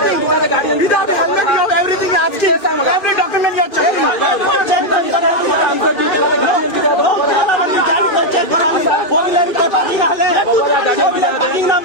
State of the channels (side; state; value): right; late; 2.4 ms